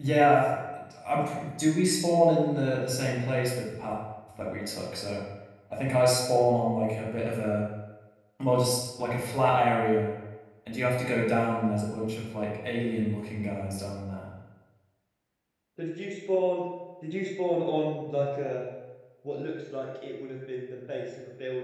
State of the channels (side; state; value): both; identical; correlation 1.00